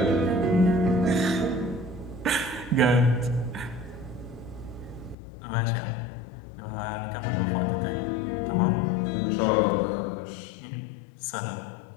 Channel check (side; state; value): right; drops out; at 5.2 s